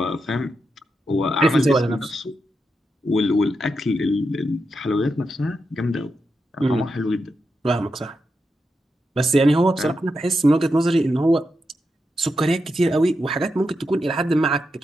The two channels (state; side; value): normal; both; correlation 0.86